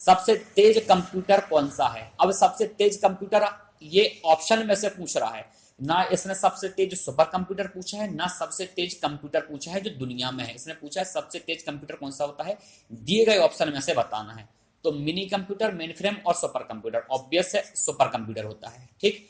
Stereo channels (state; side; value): identical; both; correlation 1.00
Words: तेज कंप्यूटर कौन सा है? अब सबसे तेज कंप्यूटर ये ऑप्शन में से पूछ रहा है ना, इसने सबसे तेज सुपर कंप्यूटर पूछा है ना सबसे तेज कंप्यूटर पूछा है जो दुनिया में है। इसने पूछा है सबसे तेज कंप्यूटर कौन सा होता है, दिए गए ऑप्शन में से बताना है। तो मिनी कंप्यूटर, मेन फ्रेम और सुपर कंप्यूटर, ऑब्वियस है सुपर कंप्यूटर होता है। ठीक,